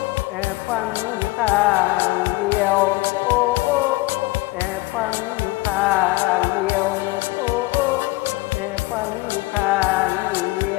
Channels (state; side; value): quieter; right; 21.3 dB